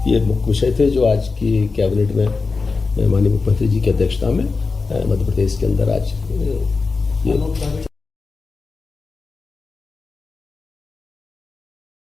ये मुख्य विषय थे जो आज की कैबिनेट में माननीय मुख्यमंत्री जी की अध्यक्षता में मध्य प्रदेश के अंदर आज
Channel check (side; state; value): right; quieter; 4.3 dB